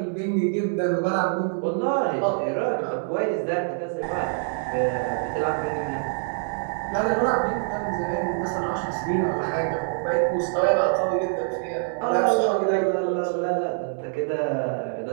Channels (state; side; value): silent; left; digital silence